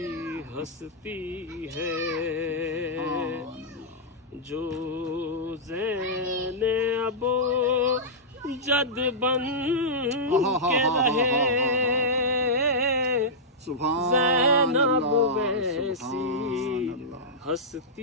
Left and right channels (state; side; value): normal; both; correlation -0.11